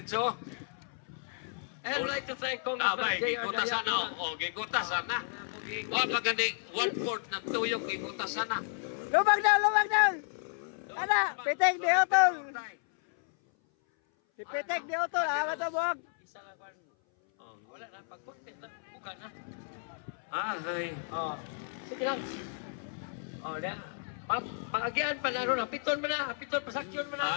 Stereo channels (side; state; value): right; silent; 56 dB below the other